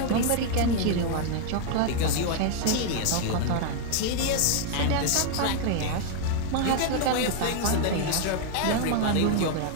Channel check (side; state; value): both; different; correlation 0.00